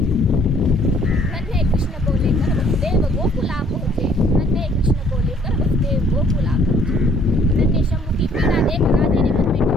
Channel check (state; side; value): normal; both; correlation 0.61